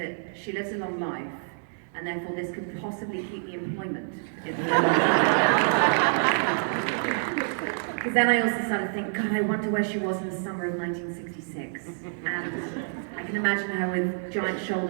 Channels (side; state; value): left; silent; digital silence